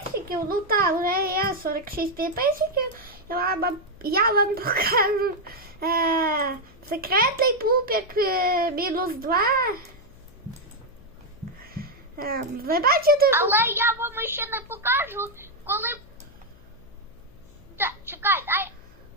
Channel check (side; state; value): left; noise; hum, 25 dB below the sound